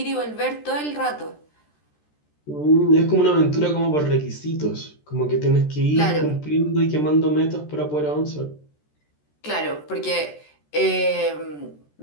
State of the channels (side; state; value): right; late; 13 ms